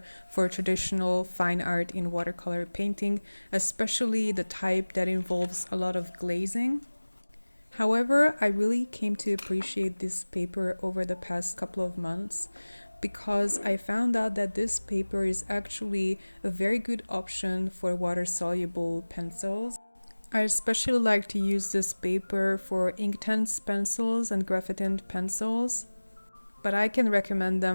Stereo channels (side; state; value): both; inverted; correlation -1.00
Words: for traditional fine art in watercolor painting, especially the type that involves a lot of glazing. However, I really came to appreciate this paper over the past couple of months because I found out that this paper is actually a very good option for water-soluble pencils. I especially like to use this paper for Inktense pencils and graphite pencils, but I can recommend